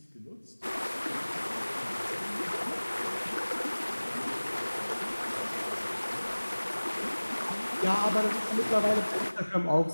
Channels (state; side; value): inverted; both; correlation -1.00